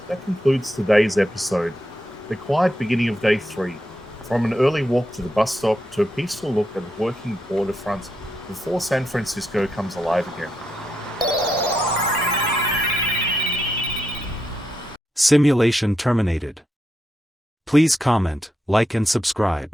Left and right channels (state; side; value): normal; both; correlation 0.83